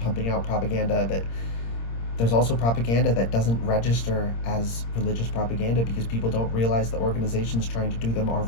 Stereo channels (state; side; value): late; right; 26 ms